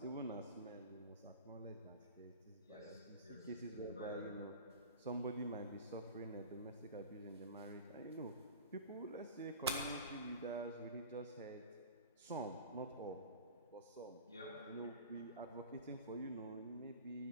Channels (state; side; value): inverted; both; correlation -0.37